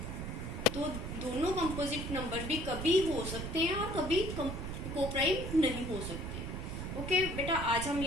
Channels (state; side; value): noise; right; rumble, 5 dB below the sound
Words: तो दोनों कंपोजिट नंबर भी कभी हो सकते हैं और कभी को प्राइम नहीं हो सकते। ओके बेटा, आज हम